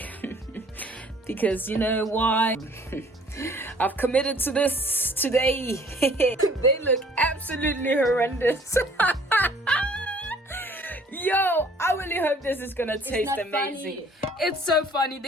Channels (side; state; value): both; normal; correlation 0.55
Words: because you know why? I've committed to this today. They look absolutely horrendous. Yo, I really hope this is gonna taste amazing. Funny. It's so funny.